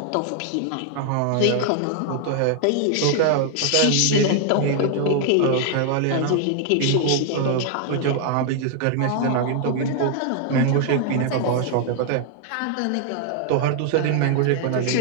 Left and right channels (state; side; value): different; both; correlation 0.00